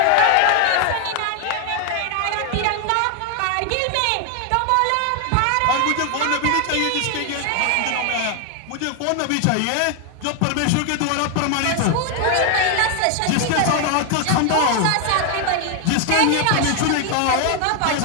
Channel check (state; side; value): different; both; correlation 0.00